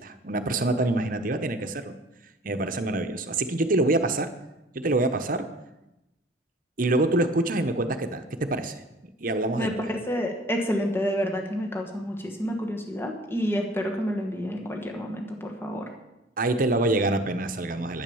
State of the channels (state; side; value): normal; both; correlation 0.48